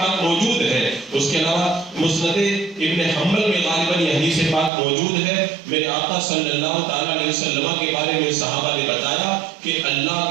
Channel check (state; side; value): drops out; left; at 4.7 s